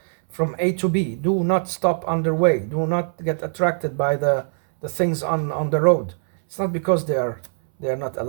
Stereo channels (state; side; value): silent; left; 64 dB below the other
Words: from A to B. Do not stop on their way. Do not get attracted by the things on the road. It's not because they are not